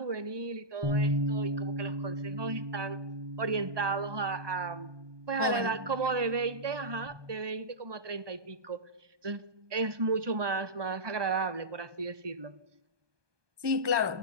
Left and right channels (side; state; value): left; late; 1.2 ms